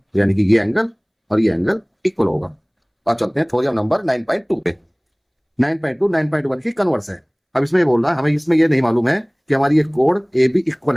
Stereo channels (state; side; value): identical; both; correlation 1.00